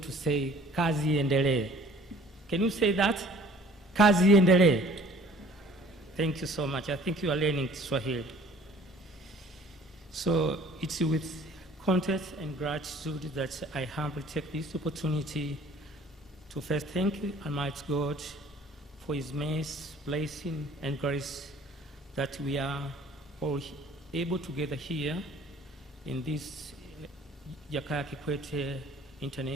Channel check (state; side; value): normal; both; correlation 0.52